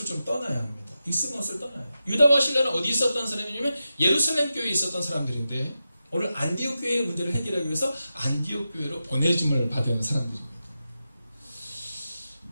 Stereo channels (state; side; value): inverted; both; correlation -0.90